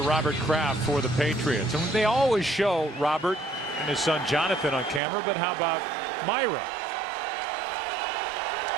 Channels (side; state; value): left; drops out; at 5.0 s